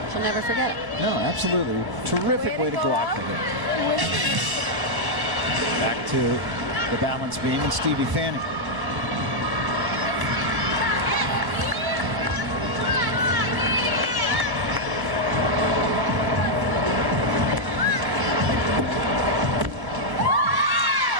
She'll never forget it. No, absolutely. Terrific way to go out for her. Back to the balance beam and Stevie Fanning.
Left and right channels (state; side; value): late; left; 1.1 ms